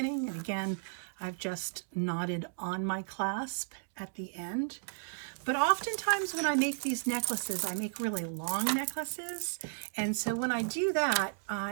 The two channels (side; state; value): left; silent; digital silence